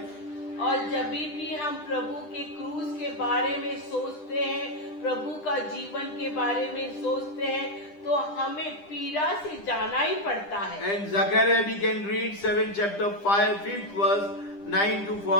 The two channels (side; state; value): right; late; 10 ms